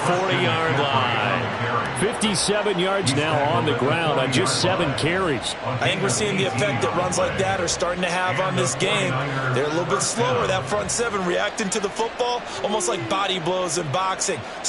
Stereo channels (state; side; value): identical; both; correlation 1.00